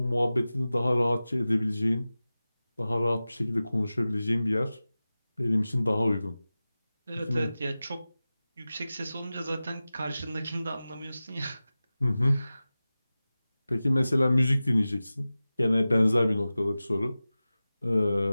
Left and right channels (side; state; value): both; inverted; correlation -0.96